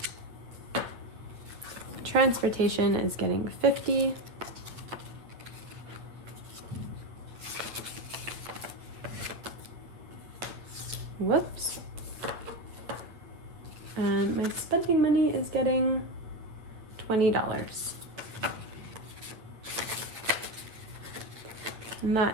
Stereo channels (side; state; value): left; late; 8.7 ms